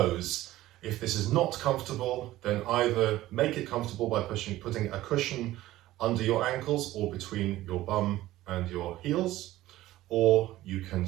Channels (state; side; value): quieter; left; 15.8 dB